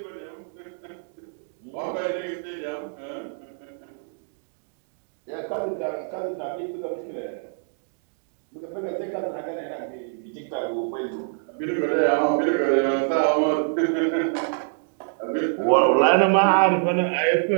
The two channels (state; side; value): silent; left; digital silence